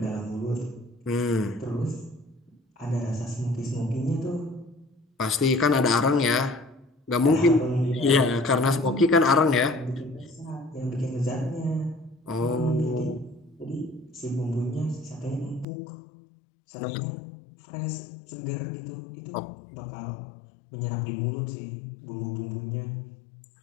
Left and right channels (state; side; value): drops out; right; at 15.7 s